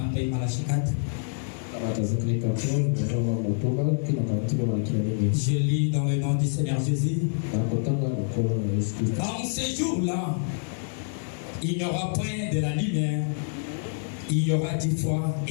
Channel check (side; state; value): right; silent; digital silence